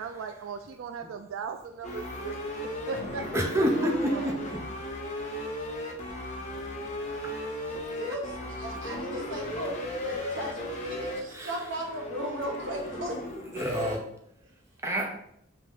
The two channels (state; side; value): normal; both; correlation 0.34